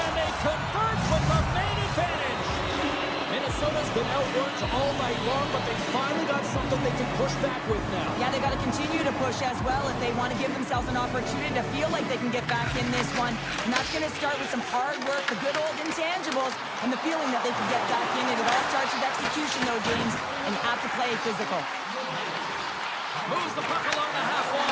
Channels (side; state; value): both; identical; correlation 1.00